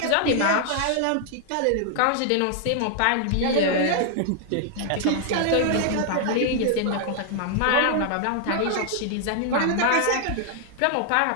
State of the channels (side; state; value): both; different; correlation 0.00